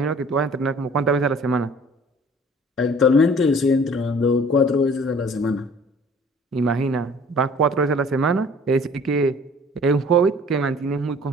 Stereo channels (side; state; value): both; normal; correlation 0.51